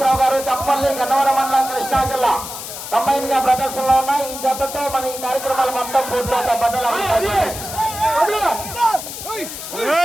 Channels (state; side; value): noise; left; hiss, 9 dB below the sound